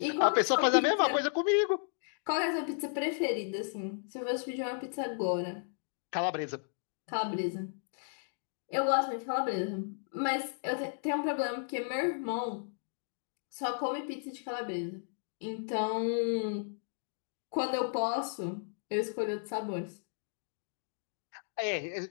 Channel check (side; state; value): right; silent; digital silence